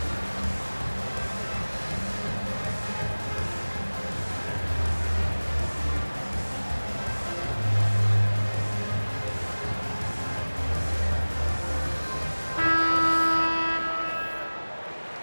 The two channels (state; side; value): inverted; both; correlation -1.00